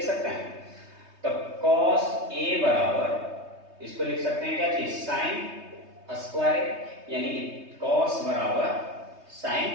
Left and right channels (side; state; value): left; late; 3.2 ms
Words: सकते हैं। तो cos A बराबर इसको लिख सकते हैं क्या चीज, sin स्क्वायर, यानी cos बराबर